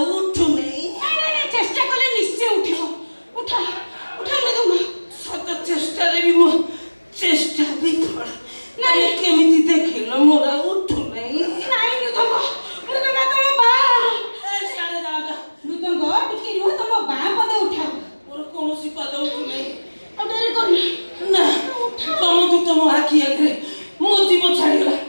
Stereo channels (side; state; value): both; inverted; correlation -1.00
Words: उठू नहीं चेष्टा कले निश्चय उठिबो उठा उठा मृदंग सत चेष्टा रे भी मो चेष्टा भी फल नहीं केमिति देखिलो मोरा उठू नहीं मृदंग मृदंग तम बा ए साले जागा मृदंग टिके रुह तम बा पद उठा मोर कोनोसी पद उठू नहीं अब डेरी कर ना तम तू तम आखी आगे मो जीव छाड़ी गला